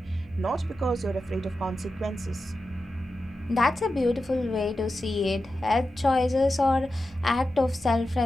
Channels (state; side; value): normal; both; correlation 0.91